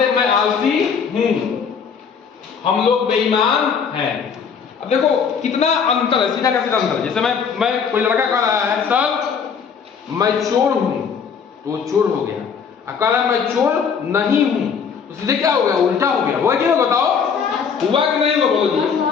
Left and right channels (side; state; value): right; quieter; 6.5 dB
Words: हैं? मैं आलसी हूं, हम लोग बेईमान हैं। अब देखो कितना अंतर है, सीधा का सीधा अंतर। जैसे मैं कोई लड़का कह रहा है सर मैं चोर हूं, तो वो चोर हो गया। अब कह रहा है मैं चोर नहीं हूं, तो सीधे क्या हो गया? उल्टा हो गया। हुआ क्यों? बताओ, हुआ कि नहीं हुआ? बोलो जी।